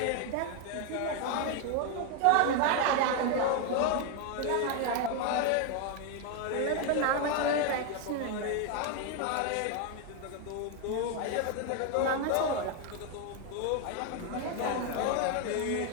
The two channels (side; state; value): both; different; correlation 0.01